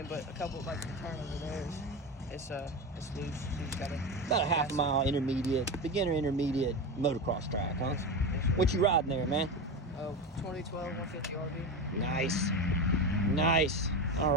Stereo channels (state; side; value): normal; both; correlation 0.21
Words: but a couple, like the turn over there, it's loose. So you just gotta about a half a mile beginner intermediate motocross track, huh? Yes. What you riding there, man? 2012 150 RV. Nice. All